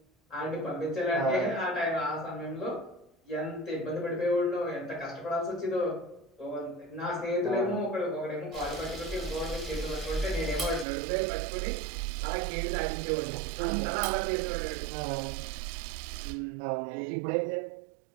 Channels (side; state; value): left; drops out; at 10.9 s